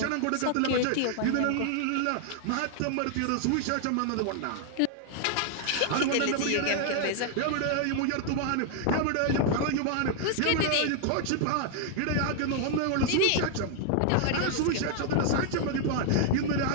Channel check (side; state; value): both; different; correlation 0.00